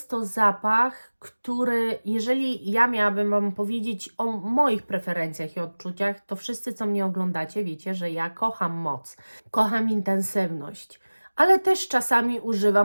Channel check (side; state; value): both; inverted; correlation -1.00